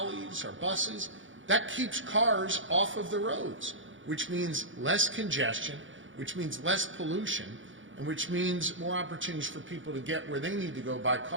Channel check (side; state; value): left; late; 0.56 ms